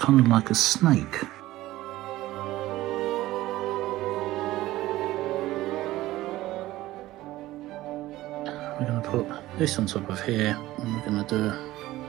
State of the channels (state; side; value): quieter; left; 16.5 dB